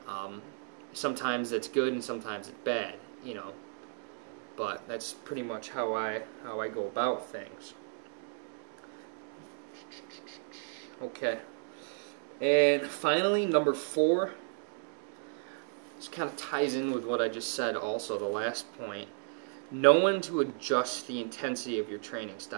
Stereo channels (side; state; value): left; silent; digital silence